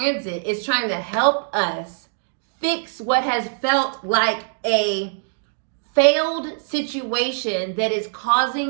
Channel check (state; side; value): silent; left; digital silence